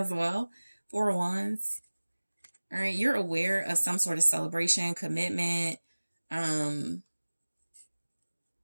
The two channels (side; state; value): both; inverted; correlation -1.00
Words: well. Four of Wands. All right. You're aware of some sort of celebration, commitment,